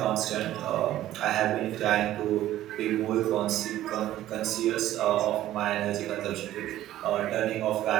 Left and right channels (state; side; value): quieter; left; 13.7 dB